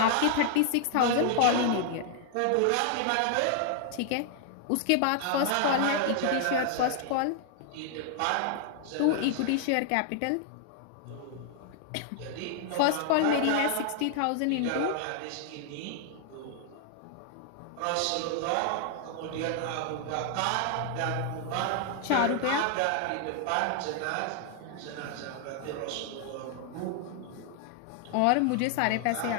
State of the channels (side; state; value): both; different; correlation 0.00